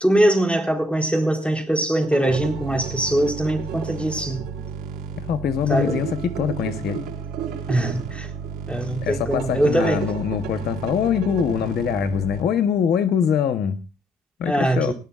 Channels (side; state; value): both; normal; correlation 0.69